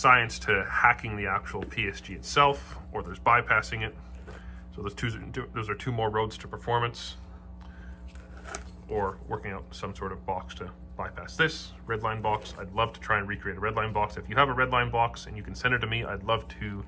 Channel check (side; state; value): both; identical; correlation 1.00